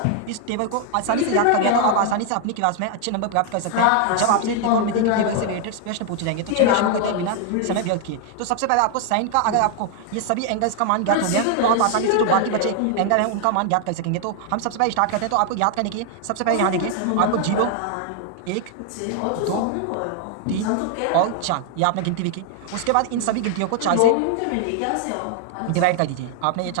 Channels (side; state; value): both; different; correlation 0.00